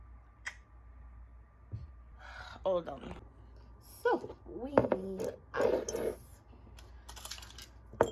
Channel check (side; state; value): both; identical; correlation 1.00